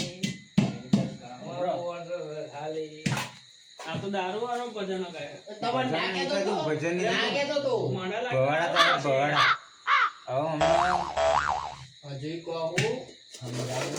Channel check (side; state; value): both; identical; correlation 1.00